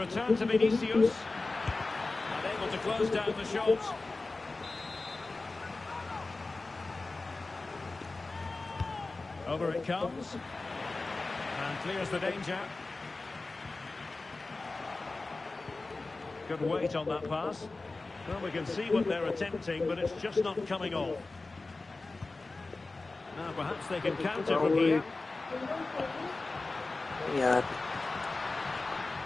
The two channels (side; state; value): right; quieter; 3.4 dB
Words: to Vinicius. And able to close down the shot. Over it comes. And clears the danger. Good weight on that pass. Well, we can see what they're attempting, but it's just not coming off. Now perhaps they can counter from here. Yeah.